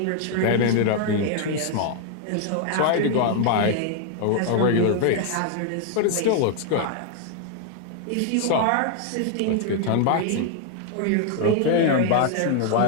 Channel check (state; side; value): different; both; correlation 0.00